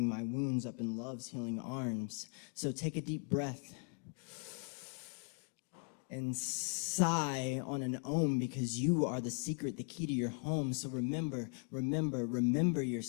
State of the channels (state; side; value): quieter; right; 39.3 dB